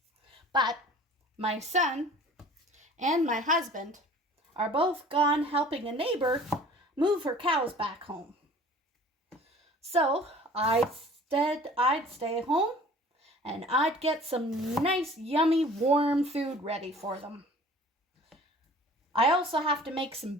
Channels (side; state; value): both; normal; correlation 0.48